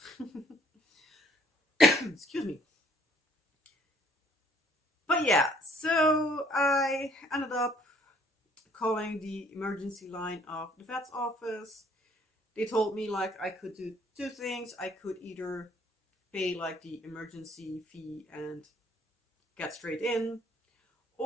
excuse me. But yeah, so I ended up calling the emergency line of the vet's office. They told me like I could do 2 things. I could either pay like the emergency fee and get straight in,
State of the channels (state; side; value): normal; both; correlation 0.61